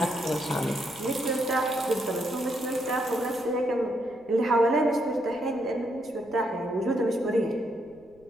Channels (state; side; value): noise; right; rumble, 29 dB below the sound